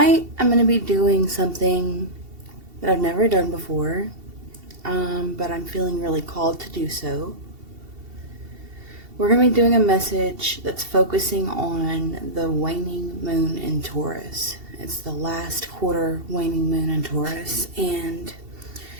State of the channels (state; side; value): late; left; 2.7 ms